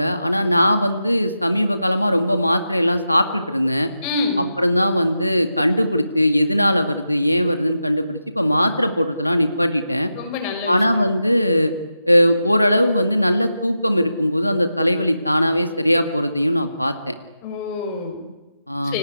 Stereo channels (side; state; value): both; inverted; correlation -0.89